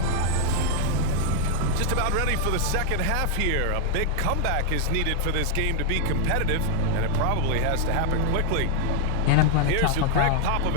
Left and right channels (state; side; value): different; both; correlation 0.00